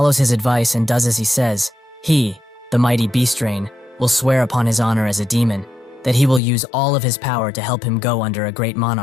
his advice and does as he says, he, the mighty Beastrain, will swear upon his honor as a demon that he will use all of his power to help him go under a great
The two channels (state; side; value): drops out; right; at 6.4 s